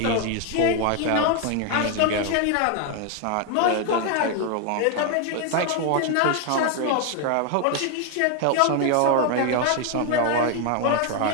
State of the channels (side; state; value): both; different; correlation 0.01